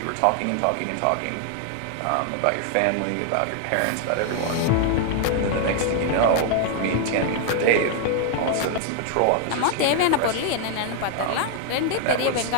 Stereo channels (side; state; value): both; different; correlation 0.00